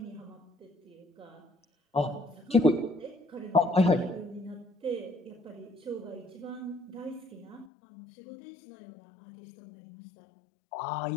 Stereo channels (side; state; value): right; drops out; at 7.7 s